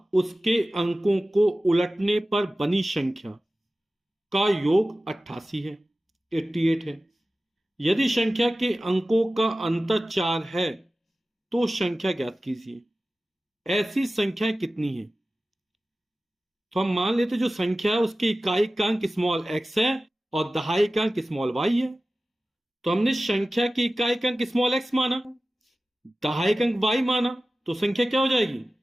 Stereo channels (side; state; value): both; normal; correlation 0.96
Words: उसके अंकों को उलटने पर बनी संख्या का योग 88 है, 88 है। यदि संख्या के अंकों का अंतर 4 है तो संख्या ज्ञात कीजिए। ऐसी संख्याएं कितनी है? तो हम मान लेते जो संख्या है उसकी इकाई का अंक स्मॉल एक्स है और दहाई का अंक स्मॉल वाई है। तो हमने संख्या की इकाई का अंक स्मॉल एक्स माना, दहाई का अंक वाई माना, तो संख्या क्या हो जाएगी?